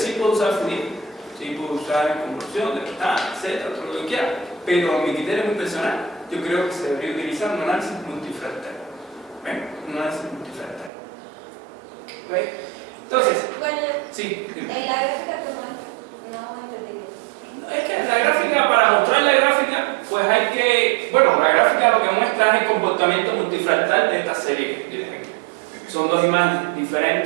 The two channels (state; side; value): drops out; left; at 10.9 s